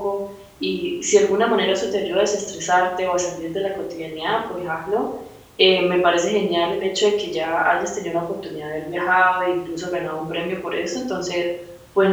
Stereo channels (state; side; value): identical; both; correlation 1.00